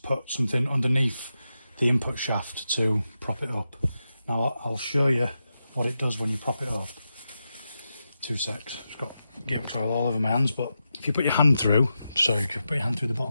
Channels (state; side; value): inverted; both; correlation -0.89